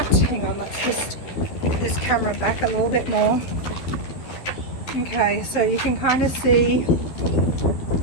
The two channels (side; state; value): right; late; 11 ms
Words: Hang on, let's just put this camera back a little bit more. Okay, so you can kind of see